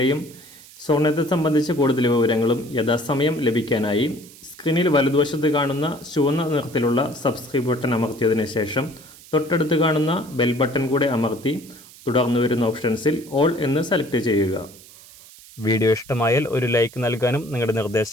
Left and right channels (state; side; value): noise; right; hiss, 21 dB below the sound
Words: സ്വർണ്ണത്തെ സംബന്ധിച്ച കൂടുതൽ വിവരങ്ങളും യഥാസമയം ലഭിക്കാനായി സ്ക്രീനിൽ വലതുവശത്ത് കാണുന്ന ചുവന്ന നിറത്തിലുള്ള സബ്സ്ക്രൈബ് ബട്ടൺ അമർത്തിയതിനു ശേഷം തൊട്ടടുത്ത് കാണുന്ന ബെൽ ബട്ടൺ കൂടെ അമർത്തി തുടർന്ന് വരുന്ന ഓപ്ഷൻസിൽ ഓൾ എന്ന് സെലക്ട് ചെയ്യുക. വീഡിയോ ഇഷ്ടമായാൽ ഒരു ലൈക്ക് നൽകാനും നിങ്ങളുടെ